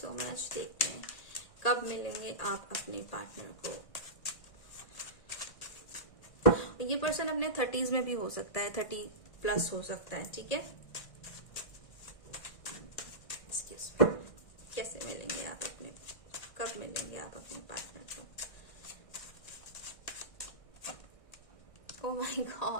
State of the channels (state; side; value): late; right; 1.6 ms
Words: much. देखते हैं कब मिलेंगे आप अपने पार्टनर को। ये पर्सन अपने 30s में भी हो सकता है, 30+ हो सकता है, ठीक है। कैसे मिलेंगे आप अपने, कब मिलेंगे आप अपने पार्टनर को। Oh my